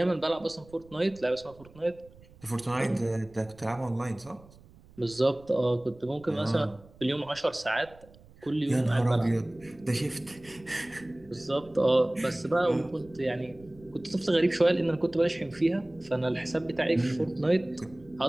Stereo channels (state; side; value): noise; right; rumble, 24 dB below the sound